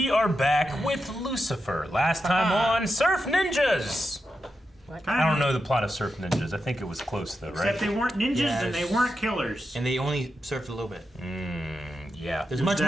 are back with Lucifer. Last time on Surf Ninjas. I don't know the plot of Surf Ninjas. I think it was close though, right? Except they weren't ninjas and they weren't killers. And they only surfed a little bit. Yeah. There's much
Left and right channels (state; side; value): normal; both; correlation 0.88